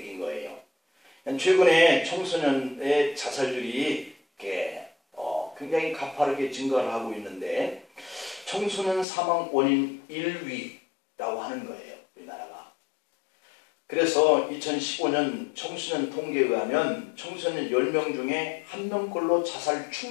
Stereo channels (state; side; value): drops out; right; at 9.1 s